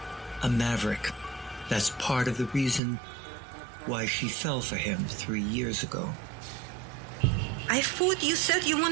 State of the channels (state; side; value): drops out; left; at 2.8 s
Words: a maverick. That's part of the reason why she fell for him 3 years ago. I thought you said you